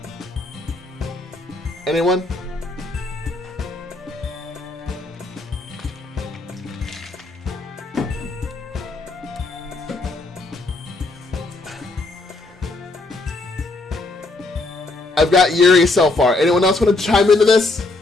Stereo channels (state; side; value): quieter; right; 3.2 dB